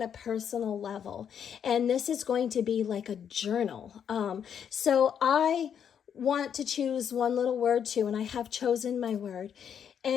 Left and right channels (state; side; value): quieter; right; 8.3 dB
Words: a personal level, and this is going to be like a journal. So I want to choose one little word too, and I have chosen my word,